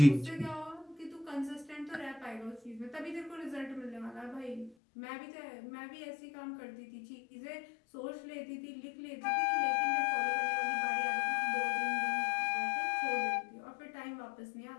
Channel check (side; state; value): right; drops out; at 4.8 s